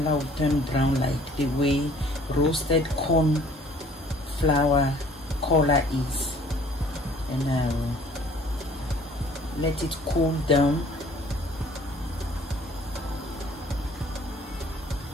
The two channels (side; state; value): both; normal; correlation 0.55